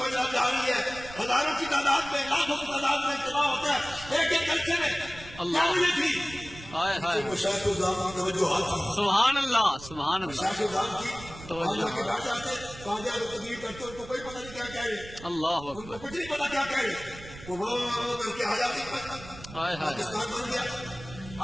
جا رہی ہے، ہزاروں کی تعداد میں، لاکھوں کی تعداد میں اجتماع ہوتا ہے ایک ایک جلسے میں۔ اللہ۔ کیا وجہ تھی؟ ہائے ہائے مشاہد الزام کی توجہات تھی، سبحان اللہ سبحان اللہ مشاہد الزام کی توجہ۔ اللہ کے بیٹھ جاتے قاضی اعظم تقریر کرتے ان کو کوئی پتہ نہیں کیا کہہ رہے، اللہ ان کو اکبر کچھ نہیں پتا کیا کہہ رہے، وہ کر کے آزادی پر ہائے ہائے پاکستان بن گیا۔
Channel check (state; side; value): noise; right; rumble, 16 dB below the sound